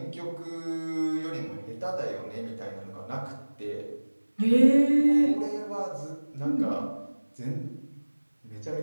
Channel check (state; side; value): inverted; both; correlation -1.00